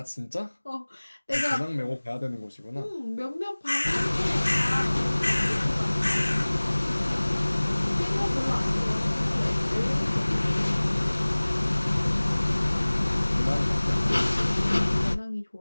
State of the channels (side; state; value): both; inverted; correlation -1.00